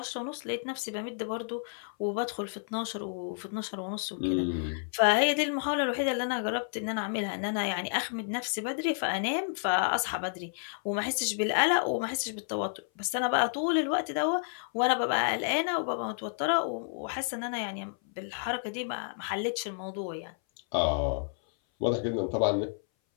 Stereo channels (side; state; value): right; silent; 57 dB below the other